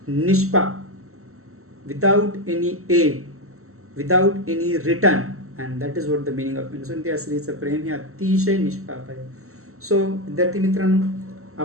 निष्पाप, without any aid, without any return, and that is what the meaning of innocent. या स्त्रीचं प्रेम हे अतिशय निष्पाप आहे. सो विद्यार्थी मित्रांनो,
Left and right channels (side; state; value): left; late; 0.63 ms